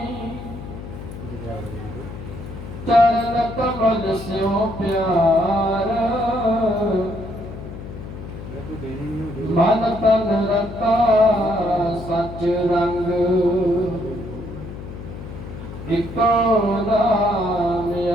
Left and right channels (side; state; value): left; noise; hum, 11 dB below the sound